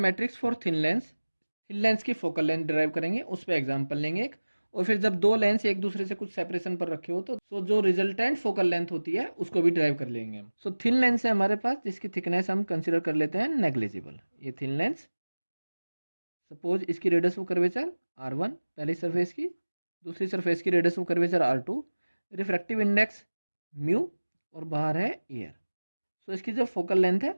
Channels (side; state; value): both; inverted; correlation -1.00